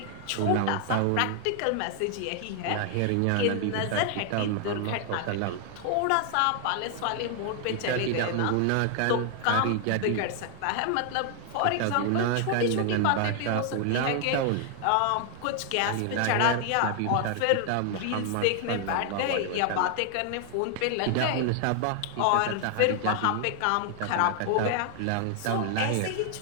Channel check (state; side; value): different; both; correlation 0.00